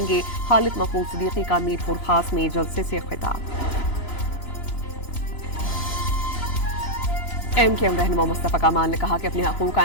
گے۔ خالد محمود صدیقی کا میرپور خاص میں جلسے سے خطاب۔ MKM رہنما مصطفیٰ کمال نے کہا کہ اپنے حقوق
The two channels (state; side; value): late; right; 3.9 ms